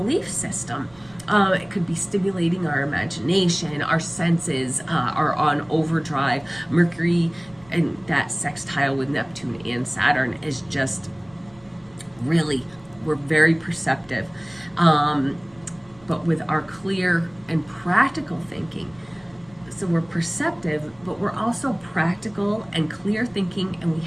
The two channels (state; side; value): noise; right; rumble, 27 dB below the sound